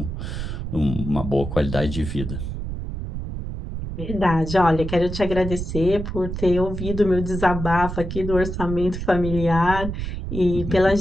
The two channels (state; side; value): noise; right; rumble, 6 dB below the sound